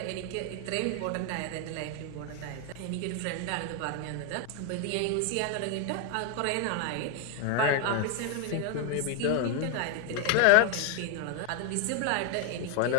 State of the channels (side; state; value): both; different; correlation 0.01